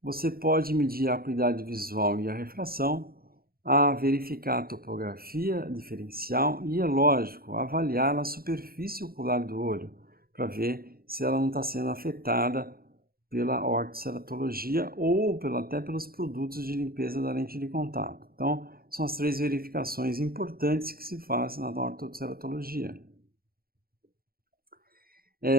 Você pode medir a acuidade visual e a refração, a verificar a topografia diferencial e, é lógico, avaliar a superfície ocular do olho para ver se ela não está sendo afetada pela ortoceratologia ou até pelos produtos de limpeza da lente de contato. Então, são as 3 verificações importantes que se fazem na ortoceratologia.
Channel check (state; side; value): late; left; 0.43 ms